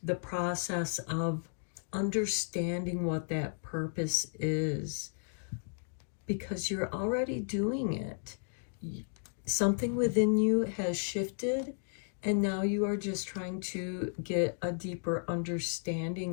the process of understanding what that purpose is, because you're already doing it. Something within you has shifted, and now you are just trying to get a deeper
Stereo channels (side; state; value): right; silent; digital silence